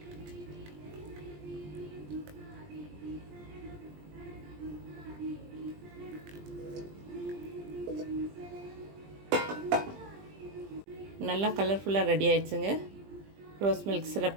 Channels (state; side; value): late; left; 20 ms